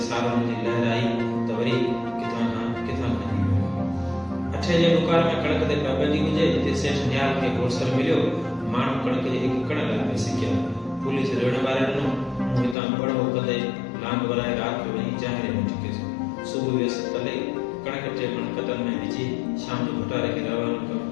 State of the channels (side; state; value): right; drops out; at 12.8 s